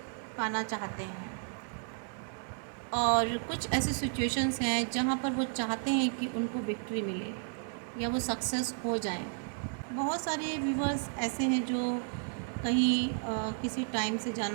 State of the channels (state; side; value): silent; left; 56 dB below the other